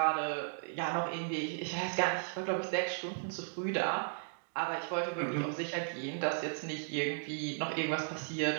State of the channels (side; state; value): left; silent; digital silence